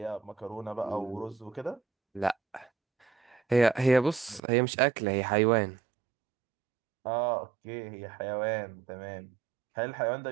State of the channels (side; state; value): left; drops out; at 4.4 s